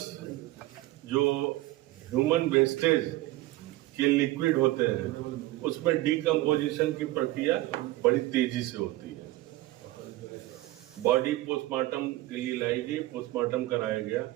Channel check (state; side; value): quieter; left; 17.6 dB